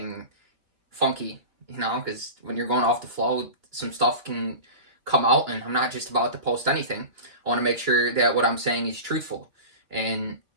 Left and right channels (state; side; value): late; left; 2.9 ms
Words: funky, because when you're going off the flow, some stuff can come out, and I'm not just about to post anything. I want to make sure that what I'm saying is truthful, and